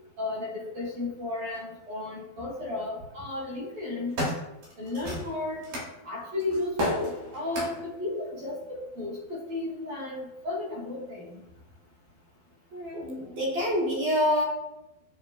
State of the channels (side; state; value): left; late; 12 ms